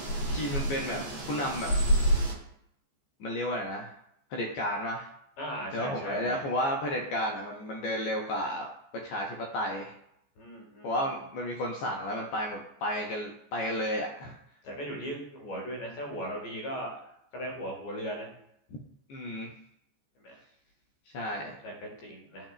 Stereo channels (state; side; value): late; right; 14 ms